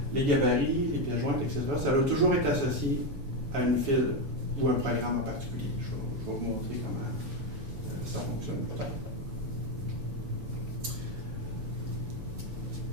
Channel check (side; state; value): left; late; 7.0 ms